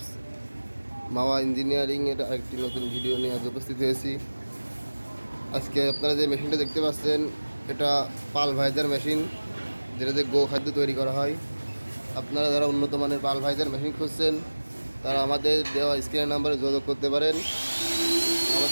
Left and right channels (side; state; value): both; inverted; correlation -1.00